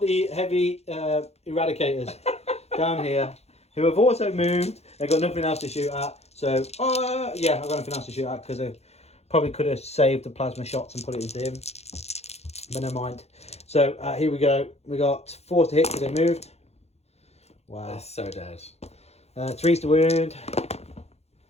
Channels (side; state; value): right; late; 0.31 ms